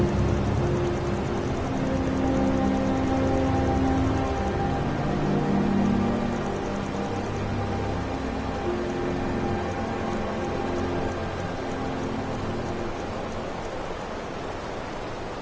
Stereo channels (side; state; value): both; identical; correlation 1.00